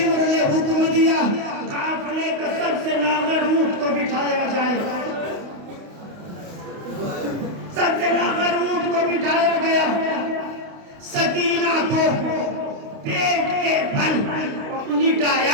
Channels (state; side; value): late; left; 29 ms